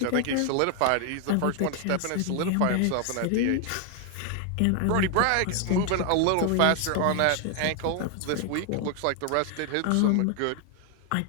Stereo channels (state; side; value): different; both; correlation 0.00